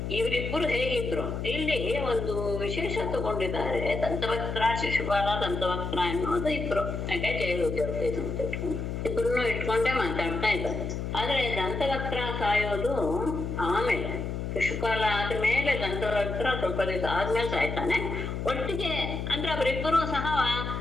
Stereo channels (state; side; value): noise; left; hum, 4 dB below the sound